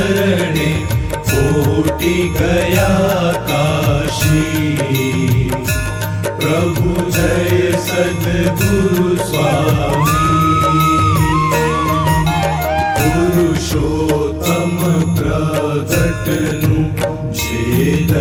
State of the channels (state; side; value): identical; both; correlation 1.00